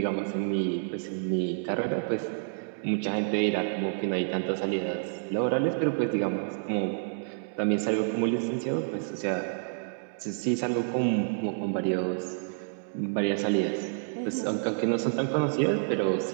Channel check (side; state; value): left; silent; digital silence